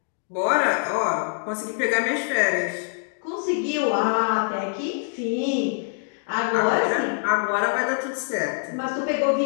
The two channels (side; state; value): right; silent; digital silence